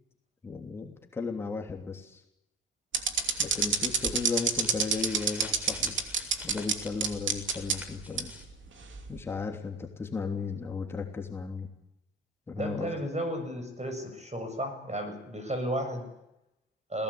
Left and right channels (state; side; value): normal; both; correlation 0.32